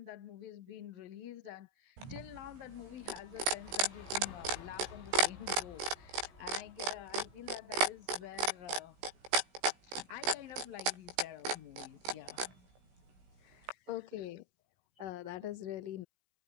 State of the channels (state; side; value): late; left; 16 ms